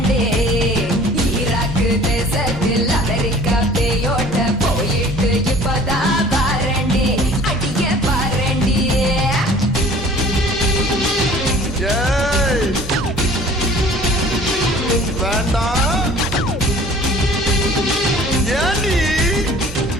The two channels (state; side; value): normal; both; correlation 0.49